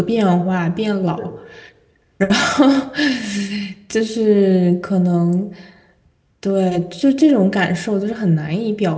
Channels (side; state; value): both; identical; correlation 1.00